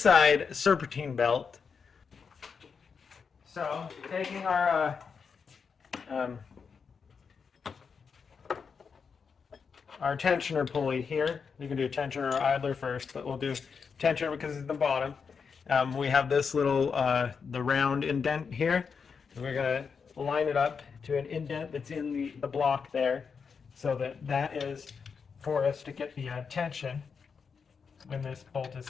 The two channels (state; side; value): quieter; right; 5.8 dB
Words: serpentine belt. So taking our tensioner pulley here. You can do tensioner or idler first, but we'll do tensioner because it's the bottom. We have this little, the round indent here. And we're going to line it up to an indent that's in the block there, so that is for us to get the tension when this bolt is